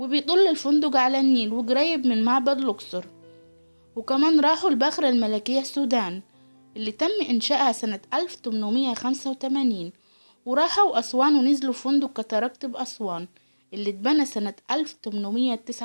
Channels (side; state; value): both; inverted; correlation -1.00